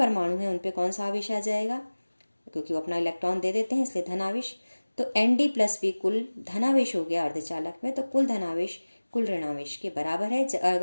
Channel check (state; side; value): inverted; both; correlation -1.00